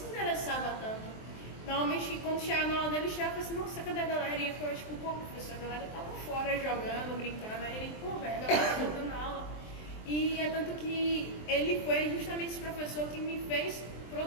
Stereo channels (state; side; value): late; right; 23 ms